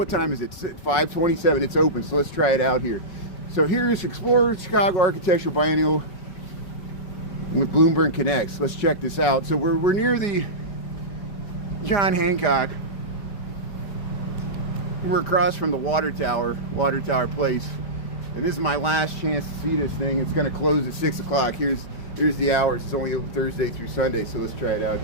time is it? 5:27. It's open, so let's try it out here. So here's Explorer Chicago Architectural Biennial with Bloomberg Connects. Let's check this out. So we're near the John Hancock. We're across from the water tower place, and this is my last chance to see this thing. It's going to close at 6 o'clock. Here's the hours. It's only open Thursday through Sunday, so let's try it out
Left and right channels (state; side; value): late; right; 5.4 ms